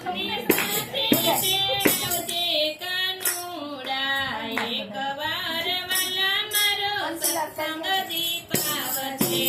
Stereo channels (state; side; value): identical; both; correlation 1.00